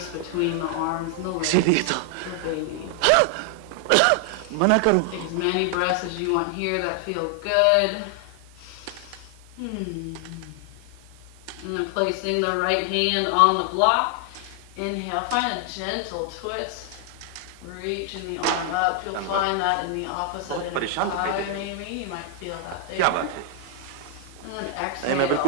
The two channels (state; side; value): different; both; correlation 0.00